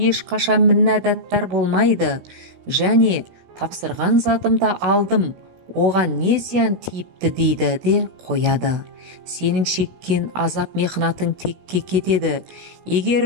ешқашан міннәдаттар болмайды, және тапсырған затымды алдым, оған не зиян тиіпті дейді де қояды. Сенің шеккен азап мехнатың текке кетеді. Егер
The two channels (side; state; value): left; late; 16 ms